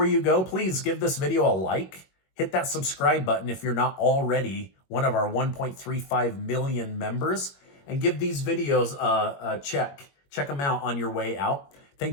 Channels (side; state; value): right; late; 21 ms